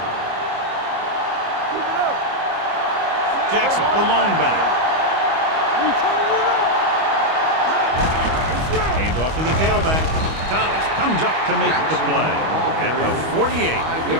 Jackson, the lone back. Hand off to the tailback. Thomas comes up to make the play at the 48.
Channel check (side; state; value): left; late; 25 ms